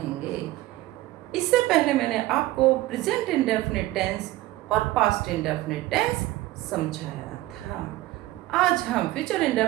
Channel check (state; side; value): quieter; left; 17.0 dB